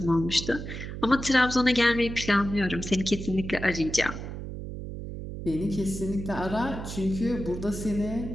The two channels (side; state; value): right; noise; hum, 8 dB below the sound